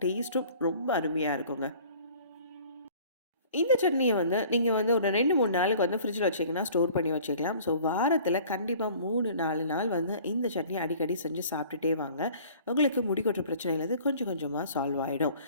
டேஸ்ட்டும் ரொம்ப அருமையாக இருக்குங்க. இந்த சட்னியை நீங்கள் ஒரு 2-3 நாளுக்கு ஃப்ரிட்ஜில் வச்சிங்கன்னா ஸ்டோர் பண்ணி வச்சுக்கலாம். ஸோ வாரத்தில் கண்டிப்பாக 3-4 நாள் இந்த சட்னியை அடிக்கடி செஞ்சு சாப்பிட்டுட்டே வாங்க. உங்களுக்கு முடி கொட்டுற பிரச்சனையிலேருந்து கொஞ்சம் கொஞ்சமாக சால்வ் ஆகிடும்.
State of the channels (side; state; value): both; inverted; correlation -0.50